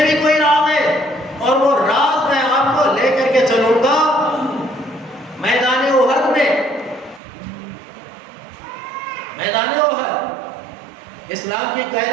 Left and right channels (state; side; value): drops out; left; at 7.2 s